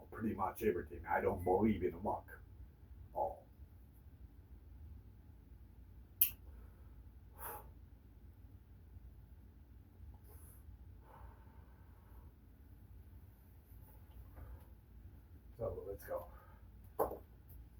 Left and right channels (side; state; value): both; identical; correlation 1.00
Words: Pretty much everything. I don't believe in luck. So let's go.